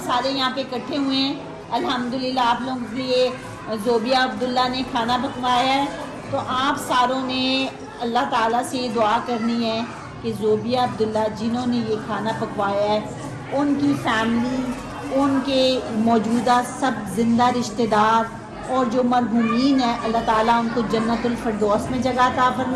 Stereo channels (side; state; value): both; identical; correlation 1.00